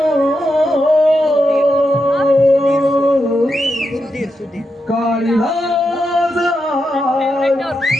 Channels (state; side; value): normal; both; correlation 0.85